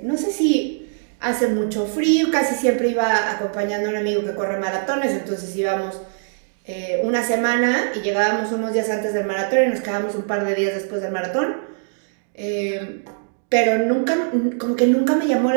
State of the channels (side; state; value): left; silent; digital silence